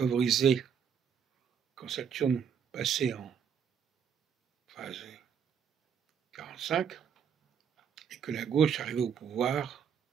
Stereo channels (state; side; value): quieter; left; 7.5 dB